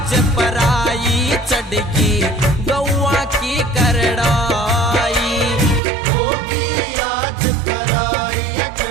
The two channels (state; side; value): drops out; left; at 5.8 s